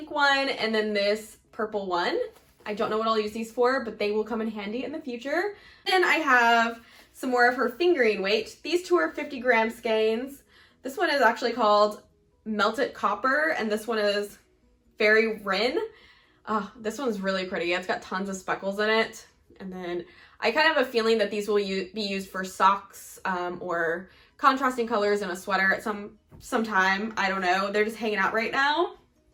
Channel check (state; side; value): identical; both; correlation 1.00